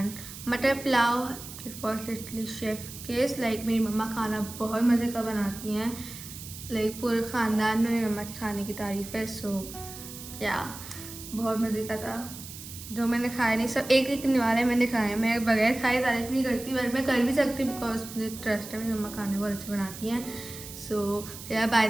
मटर pulao. It was literally chef case. Like मेरी मम्मा खाना बहुत मज़े का बनाती हैं, लाइक पूरे ख़ानदान में मेरी मम्मा के खाने की तारीफ़ है। सो या बहुत मज़े का था। जो मैंने खाया नहीं, सब एक निवाले मैंने खाए, मैं बगैर खाए तारीफ़ नहीं करती, बट मैं कर भी सकती बिकॉज मुझे ट्रस्ट है, मेरी मम्मा खाने बहुत अच्छे बनाती हैं। सो या बाय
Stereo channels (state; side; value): noise; right; hiss, 13 dB below the sound